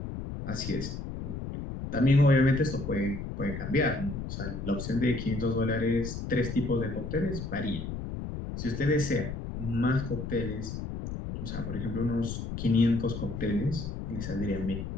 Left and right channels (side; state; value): left; noise; rumble, 6 dB below the sound